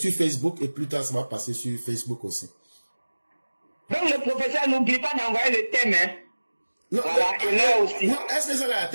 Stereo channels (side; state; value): both; inverted; correlation -1.00